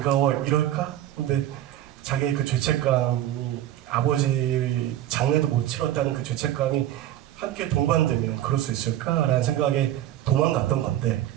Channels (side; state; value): left; quieter; 12.7 dB